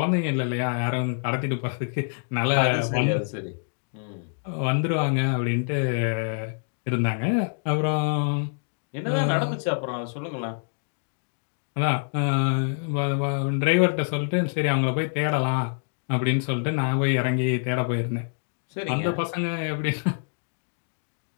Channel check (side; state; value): right; silent; digital silence